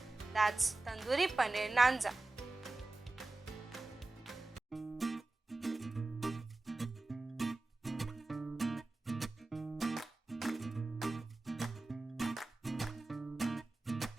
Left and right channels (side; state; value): left; quieter; 3.0 dB